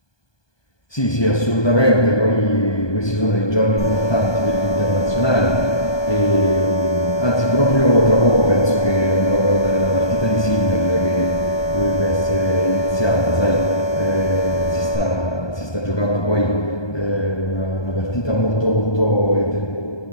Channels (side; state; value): right; late; 1.2 ms